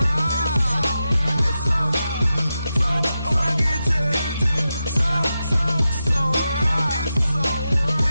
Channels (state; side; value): inverted; both; correlation -0.90